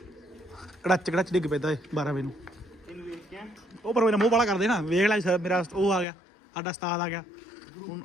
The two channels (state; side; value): drops out; right; at 6.1 s